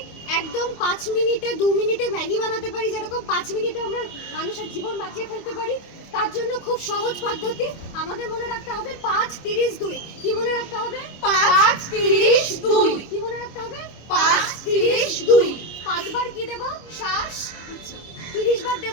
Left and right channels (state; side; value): late; right; 25 ms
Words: একদম 5 মিনিটে 2 মিনিটে ম্যাগি বানাতে পারি, যেরকম 5 মিনিটে আমরা মানুষের জীবন বাঁচিয়ে ফেলতে পারি। তার জন্য খুব সহজ পদ্ধতি আমাদের মনে রাখতে হবে 5-30-2। কি মনে রাখতে হবে? 5-30-2। কি মনে রাখতে হবে? 5-30-2। 5 বার কি দেব? শ্বাস। 30 বার